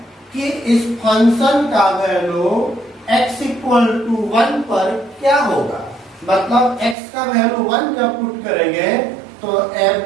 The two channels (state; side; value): drops out; left; at 7.0 s